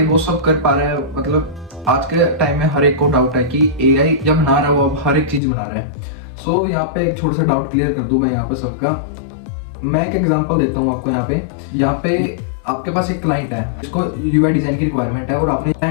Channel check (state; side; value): drops out; right; at 5.4 s